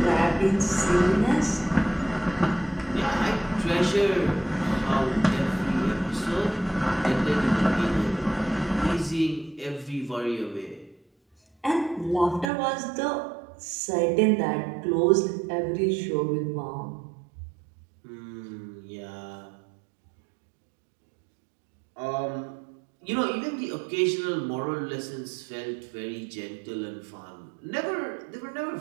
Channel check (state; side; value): drops out; left; at 12.5 s